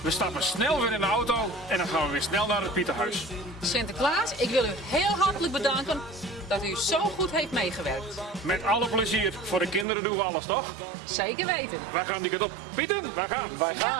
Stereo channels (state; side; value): drops out; left; at 9.9 s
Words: We stappen snel weer in de auto en dan gaan we weer snel naar het Pieterhuis. Sinterklaas, ik wil u heel hartelijk bedanken dat u zo goed heeft meegewerkt. Met alle plezier. Voor de kinderen doen we alles, toch? Zeker weten. Wij gaan die kant op. Pieter, wij gaan. Wij